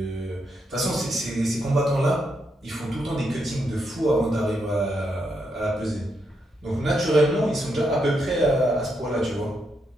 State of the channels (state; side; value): normal; both; correlation 0.80